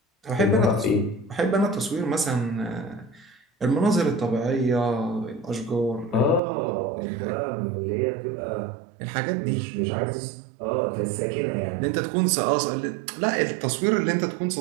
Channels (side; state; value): left; drops out; at 6.4 s